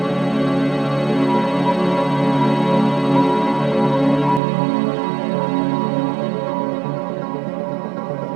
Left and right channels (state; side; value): drops out; left; at 4.4 s